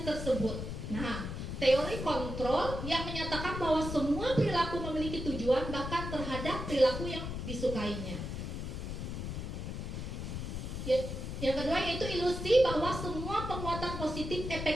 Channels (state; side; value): noise; left; rumble, 5 dB below the sound